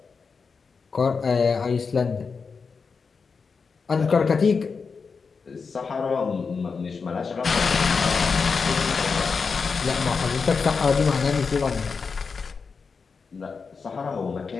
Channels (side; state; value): right; quieter; 5.1 dB